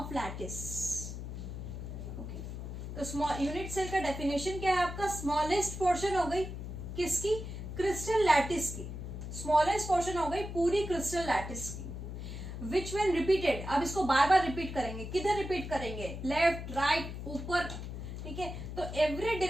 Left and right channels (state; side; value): noise; left; hum, 7 dB below the sound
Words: lattice. Okay, तो यूनिट सेल का डेफिनेशन क्या है आपका? स्मॉलेस्ट पोर्शन हो गई किसकी? क्रिस्टल लैटिस की। स्मॉलेस्ट पोर्शन हो गई पूरी क्रिस्टल लैटिस की। विच व्हेन रिपीटेड, अब इसको बार बार रिपीट करेंगे। किधर रिपीट करेंगे? लेफ्ट, राइट, ऊपर। ठीक है, तो एवरी